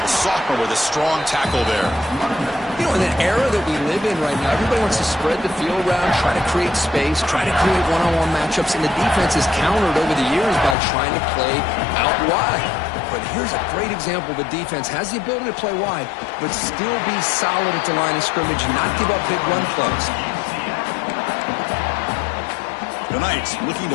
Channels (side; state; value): right; drops out; at 10.8 s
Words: Sophomore with a strong tackle there. You know, in the era that we live in right now, everybody wants to spread the field around, try to create space, try to create one-on-one matchups, and the defense is countered over the years by trying to play out wide. But here's a great example of a defense has the ability to play wide, but still be solid at the line of scrimmage and not give up big run plays. The Knights looking